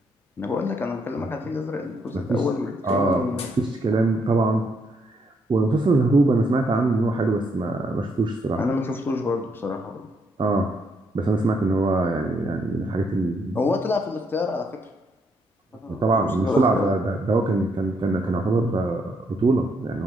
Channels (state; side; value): normal; both; correlation 0.74